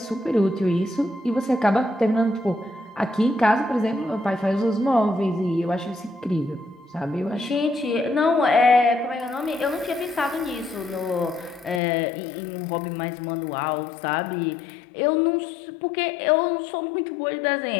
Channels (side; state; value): right; drops out; at 11.8 s